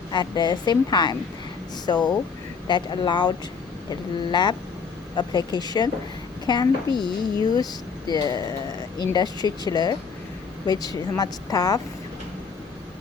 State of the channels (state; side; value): quieter; right; 5.4 dB